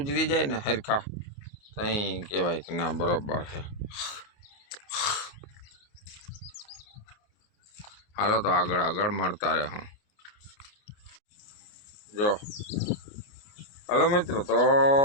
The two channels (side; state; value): right; late; 28 ms